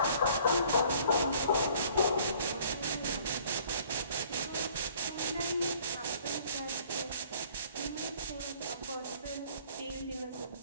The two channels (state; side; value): inverted; both; correlation -0.56